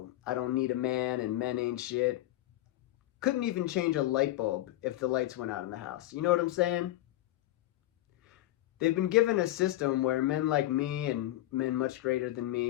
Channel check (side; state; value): right; quieter; 15.5 dB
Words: I don't need a man, and men ain't shit, couldn't even change a light bulb if the lights went out in the house. You know what I'm saying? They've been given a system where men like me and men much greater than